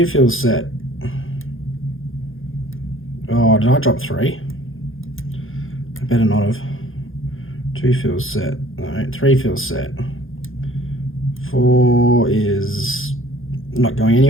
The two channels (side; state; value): right; late; 0.59 ms